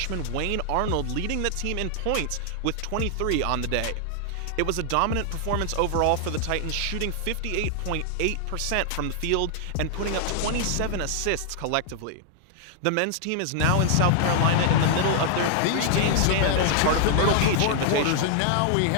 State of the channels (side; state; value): both; different; correlation 0.00